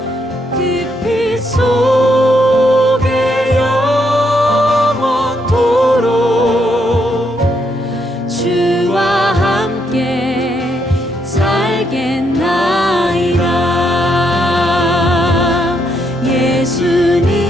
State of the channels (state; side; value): normal; both; correlation 0.76